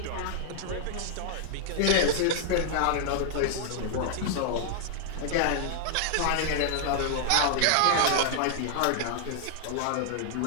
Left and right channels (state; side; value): different; both; correlation -0.01